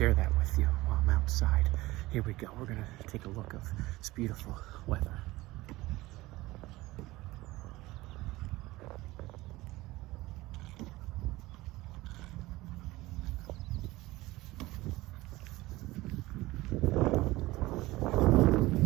that with you while I'm outside. Here we go. We're gonna take a look of this beautiful weather.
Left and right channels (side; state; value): left; quieter; 19.1 dB